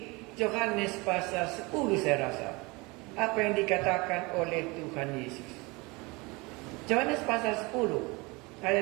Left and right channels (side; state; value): left; quieter; 25.4 dB